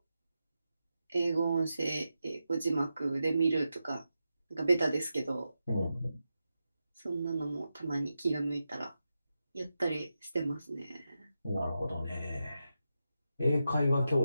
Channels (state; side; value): inverted; both; correlation -0.89